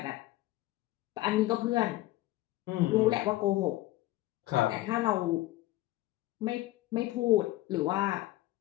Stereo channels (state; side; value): quieter; right; 17.3 dB